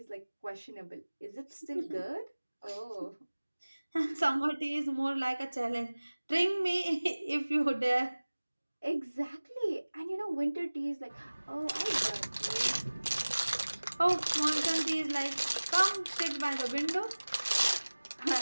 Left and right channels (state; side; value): inverted; both; correlation -1.00